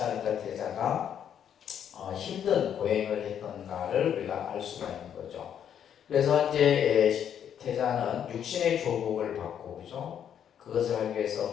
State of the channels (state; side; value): quieter; right; 9.0 dB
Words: 태자가 힘든 고행을 했던가를 우리가 알 수가 있는 거죠. 그래서 이제 태자는 육신의 조복을 받고, 그죠? 그것을 하기